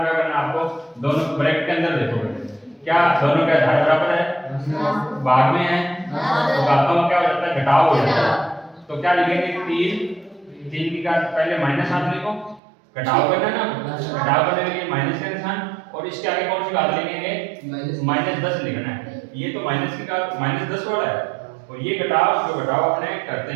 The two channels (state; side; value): drops out; left; at 12.6 s